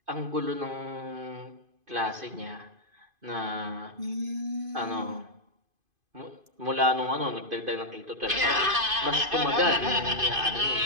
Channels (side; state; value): left; late; 2.5 ms